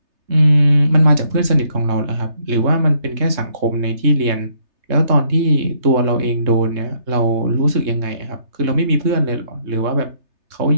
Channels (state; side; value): late; left; 3.3 ms